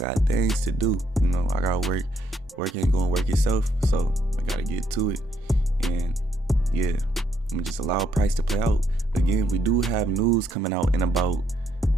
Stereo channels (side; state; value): both; normal; correlation 0.73